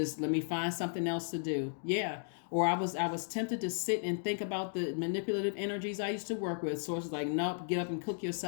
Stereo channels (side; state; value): right; silent; digital silence